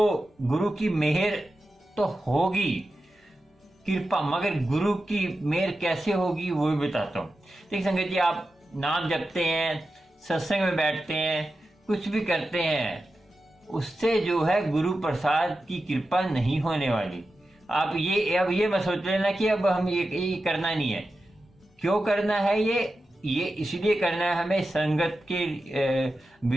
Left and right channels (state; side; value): normal; both; correlation 0.92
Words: गुरु की मेहर तो होगी, कृपा, मगर गुरु की मेहर कैसे होगी वो भी बताता हूँ। देखिए संगत जी, आप नाम जपते हैं, सत्संग में बैठते हैं, कुछ भी करते हैं, उससे जो है गुरु प्रसाद की कृपा नहीं होने वाली। आप ये मत सोच लेना कि अब हम ये करना नहीं है। क्यों करना है ये इसलिए करना है, हमें संगत के